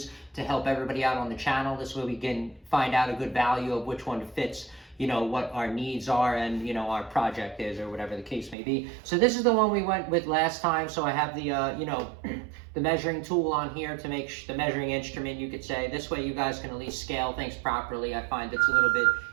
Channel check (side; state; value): left; drops out; at 8.6 s